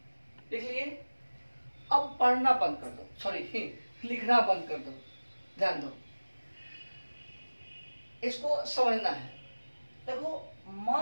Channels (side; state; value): both; inverted; correlation -1.00